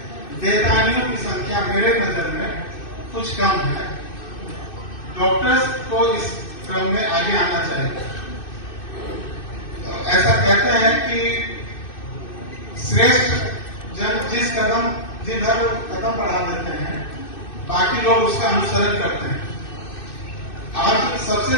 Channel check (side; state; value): right; late; 2.6 ms